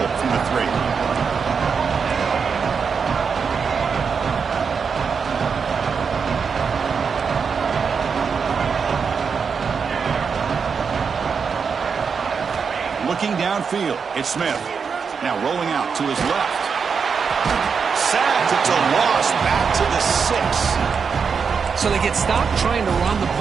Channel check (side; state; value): left; quieter; 5.9 dB